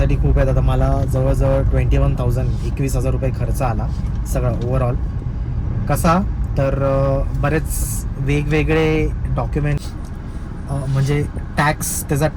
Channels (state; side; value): identical; both; correlation 1.00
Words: खूप आहेत. आता मला जवळजवळ 21,000 21,000 रुपये खर्च आला सगळा ओव्हरऑल. कसा तर बरेच वेगवेगळे डॉक्युमेंट्स, म्हणजे त्याचा